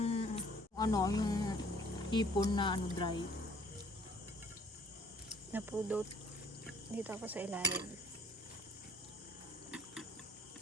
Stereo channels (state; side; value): normal; both; correlation 0.57